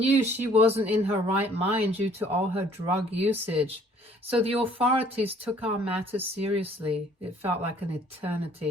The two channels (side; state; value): both; normal; correlation 0.58